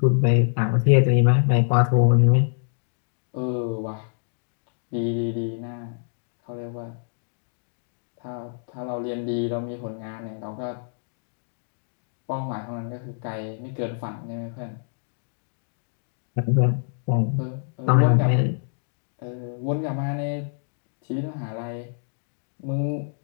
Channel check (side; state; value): right; silent; digital silence